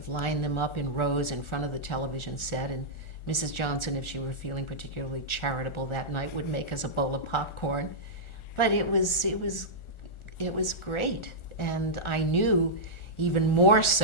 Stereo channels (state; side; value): late; right; 1.4 ms